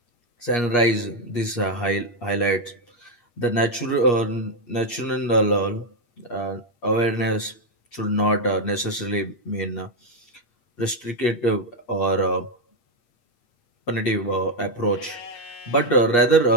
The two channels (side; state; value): right; late; 8.4 ms